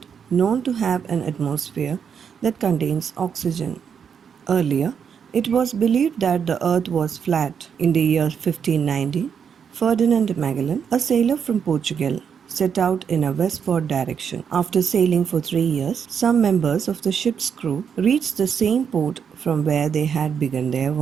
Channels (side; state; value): left; quieter; 7.2 dB